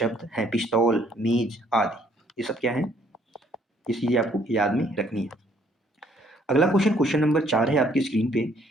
हैं। पिस्तौल, मेज आदि ये सब क्या है? ये चीज़ें आपको याद में रखनी है। अगला क्वेश्चन, क्वेश्चन नंबर 4 है आपकी स्क्रीन पे।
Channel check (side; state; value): both; normal; correlation 0.64